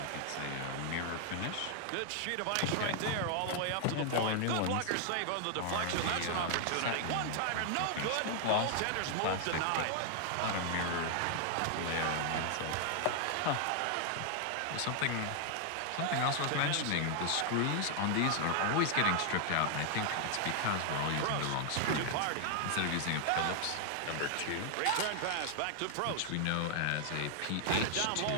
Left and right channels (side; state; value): both; different; correlation 0.00